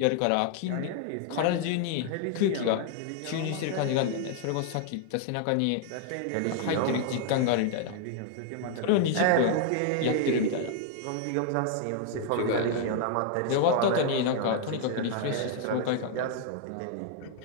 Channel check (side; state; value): both; different; correlation -0.01